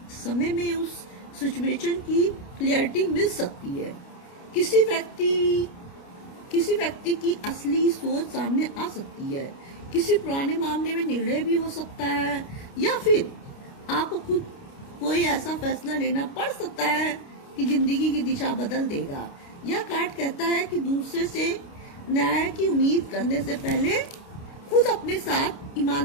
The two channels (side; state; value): right; late; 29 ms